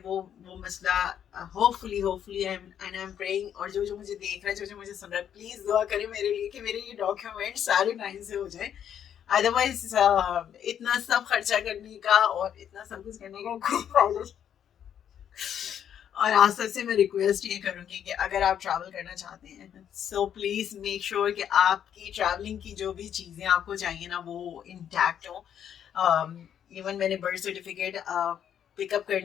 मसला, hopefully hopefully I am praying. और जो जो मुझे देख रहा है, जो जो मुझे सुन रहा है, प्लीज दुआ करें मेरे लिए कि मेरे ये डॉक्यूमेंट सारे टाइम से हो जाए। अदरवाइज इतना सब खर्चा करने का और इतना सब कुछ करने का कोई फायदा। और आज सबसे मैं रिक्वेस्ट ये करूंगी कि अगर आप ट्रैवल करना चाहते हैं, सो प्लीज मेक श्योर कि आपकी ट्रैवलिंग की जो भी चीजें आपको चाहिए ना वो इंटैक्ट हो। इवन मैंने बर्थ सर्टिफिकेट पिकअप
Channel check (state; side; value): quieter; right; 9.3 dB